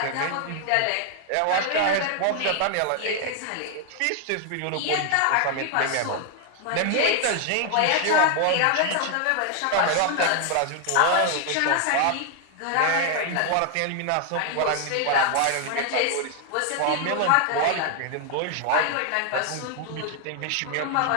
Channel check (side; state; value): both; different; correlation 0.00